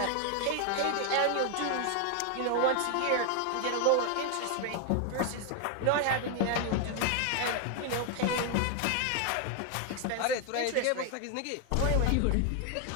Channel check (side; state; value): both; different; correlation 0.00